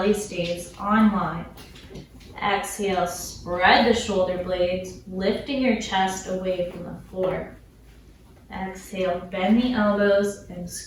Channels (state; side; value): identical; both; correlation 1.00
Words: stays on line. Exhale, spread the shoulder blades, lifting your chest away from the floor. Exhale, bend the elbows and